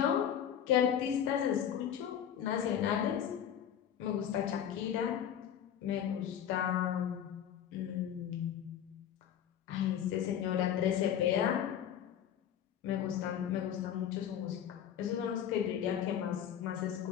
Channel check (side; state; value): right; quieter; 9.5 dB